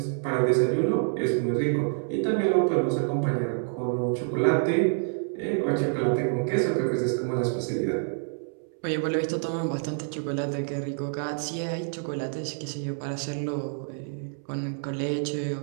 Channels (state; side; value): silent; left; 60 dB below the other